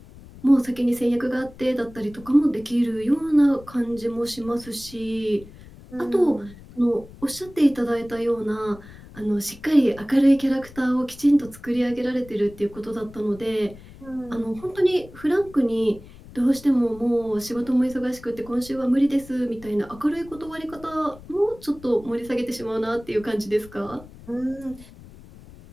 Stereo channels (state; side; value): noise; left; rumble, 20 dB below the sound